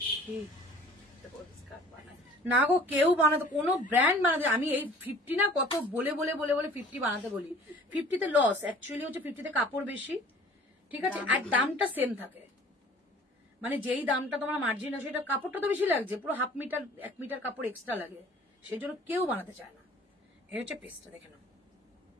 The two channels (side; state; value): both; normal; correlation 0.49